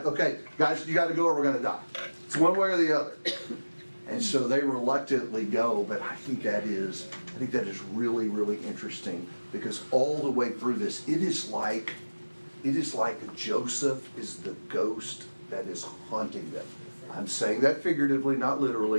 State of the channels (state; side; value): inverted; both; correlation -1.00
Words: okay, guys, you gotta go or we're gonna die. It's one way or the other. And so they reluctantly go, but I think that is really, really interesting, because all the way through this, it is like Joseph is the ghost that is haunting them. I'm saying that figuratively, not